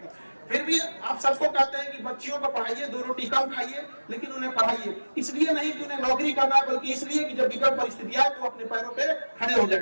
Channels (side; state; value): both; inverted; correlation -1.00